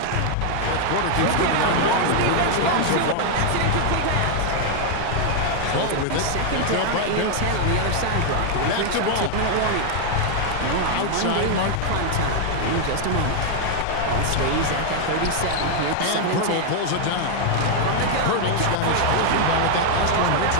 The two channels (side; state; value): both; different; correlation 0.00